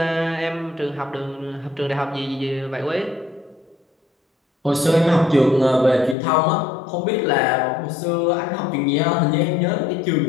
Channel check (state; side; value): drops out; right; at 6.2 s